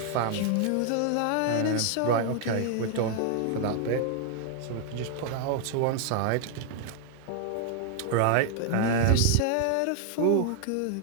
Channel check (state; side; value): different; both; correlation 0.00